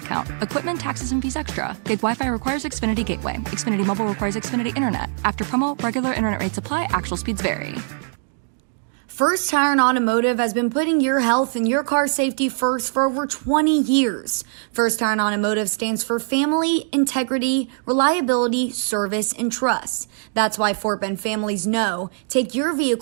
Equipment, taxes, and fees extra. Gig Wi-Fi requires Xfinity Gateway. Xfinity Mobile requires Xfinity Internet. After promo, regular internet rates apply. Actual speeds vary. First Tire and Automotive has been putting your health and your car safety first for over 20 years. First Tire and Automotive stands for family, integrity, reliability, service, and trust. That's why Fort Bend families know take your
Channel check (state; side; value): silent; left; digital silence